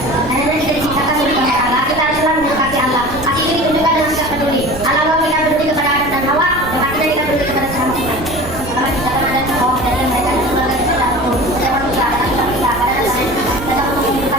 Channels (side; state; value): right; noise; rumble, 13 dB below the sound